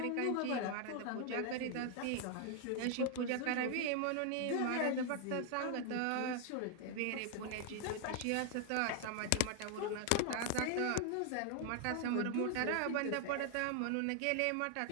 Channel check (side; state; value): both; different; correlation 0.00